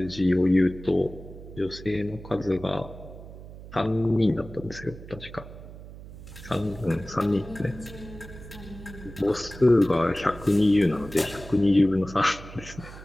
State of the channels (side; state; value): right; noise; hum, 15 dB below the sound